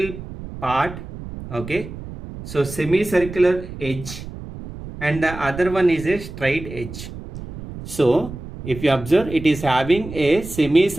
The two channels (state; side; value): noise; right; rumble, 12 dB below the sound